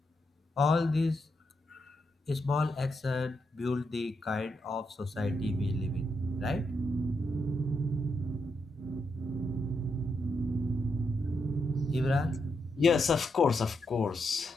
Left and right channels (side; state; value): both; normal; correlation 0.82